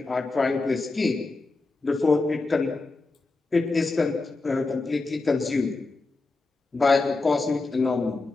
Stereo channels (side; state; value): right; quieter; 3.5 dB